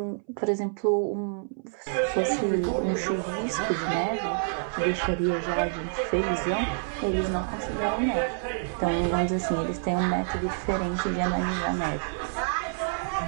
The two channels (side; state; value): left; silent; 60 dB below the other